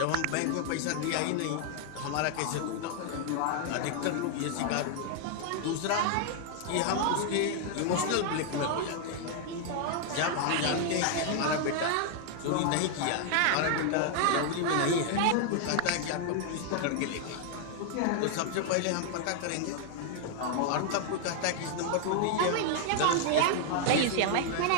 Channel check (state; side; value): different; both; correlation 0.00